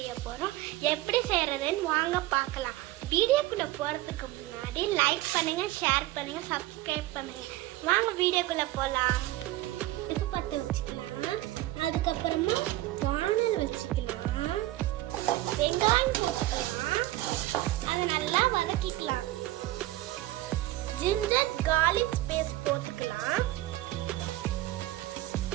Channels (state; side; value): quieter; left; 16.7 dB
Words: போகிறோம். எப்படி செய்கிறதுன்னு வாங்க பார்க்கலாம். வீடியோக்குள்ளே போகிறதுக்கு முன்னாடி லைக் பண்ணுங்கள், ஷேர் பண்ணுங்கள், சப்ஸ்கிரைப் பண்ணுங்கள். வாங்க வீடியோக்குள்ளே போகலாம். அடுப்பு பற்ற வச்சுக்கலாம். அதுக்கப்புறமா வானல் வச்சுக்கலாம். வெங்காயம் போட்டுக்கலாம். அதை நல்லா வதக்கிக்கலாம். ஜிஞ்சர் கார்லிக் பேஸ்ட் போட்டுக்கலாம்.